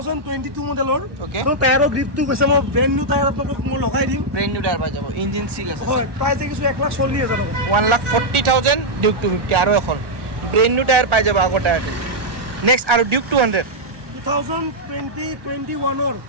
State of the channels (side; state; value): left; late; 1.1 ms